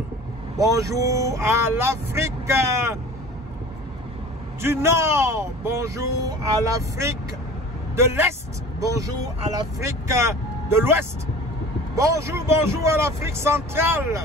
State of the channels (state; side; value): normal; both; correlation 0.41